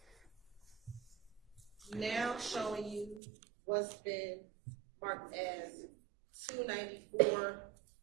Now showing you what's been marked as 294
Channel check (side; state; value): left; drops out; at 3.2 s